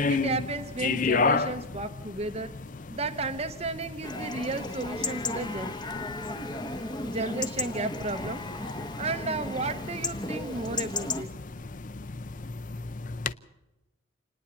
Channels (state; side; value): normal; both; correlation 0.12